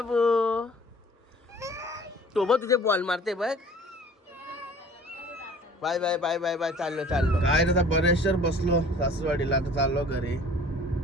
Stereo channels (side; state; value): both; normal; correlation 0.49